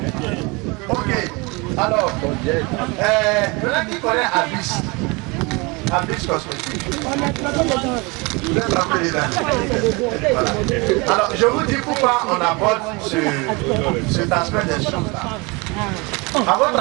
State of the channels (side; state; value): left; quieter; 27.1 dB